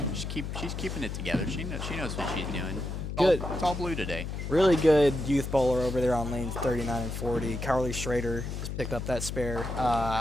she's keeping it together. She knows what she's doing. Good. It's all blue today. Really good youth bowler over there on lanes 39 and 40. Carly Schrader has picked up that spare.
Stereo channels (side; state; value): left; noise; hum, 5 dB below the sound